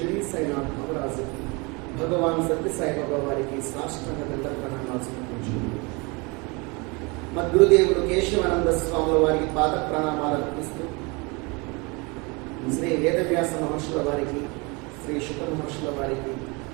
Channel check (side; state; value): left; quieter; 28.4 dB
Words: साईनाथ महाराज भगवान सत्य साई बाबा వారికి సాష్టాంగ దండ ప్రణామాలు సమర్పించుకుంటున్నాను. మద్గురుదేవుడు కేశవానంద స్వాముల వారికి పాద ప్రణామాలు అర్పిస్తూ శ్రీ వేదవ్యాస మహర్షుల వారికి శ్రీ శుక మహర్షుల వారికి